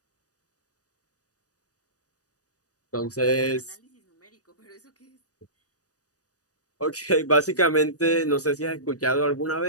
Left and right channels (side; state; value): right; late; 0.67 ms